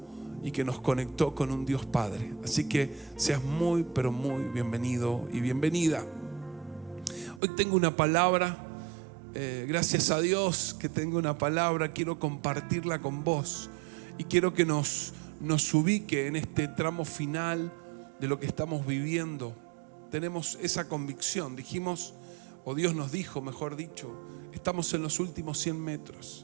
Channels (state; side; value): drops out; left; at 7.4 s